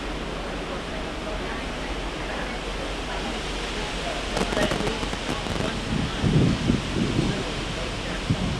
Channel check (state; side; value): identical; both; correlation 1.00